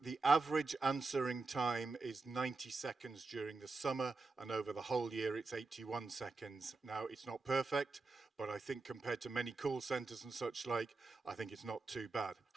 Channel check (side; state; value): left; quieter; 3.8 dB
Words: average answering time is 90 seconds during the summer, and over the whole year it's 81 seconds. Now, it's not perfect, but I think compared to many call centers and such like, I think it's not too bad.